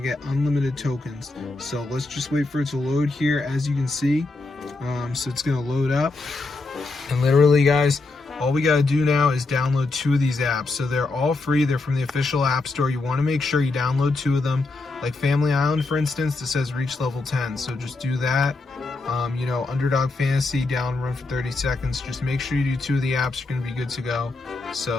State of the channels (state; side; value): quieter; right; 3.4 dB